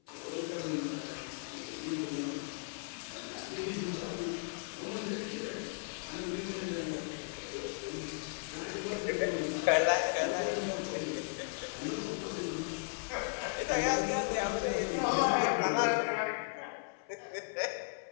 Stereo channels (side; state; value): right; silent; 54 dB below the other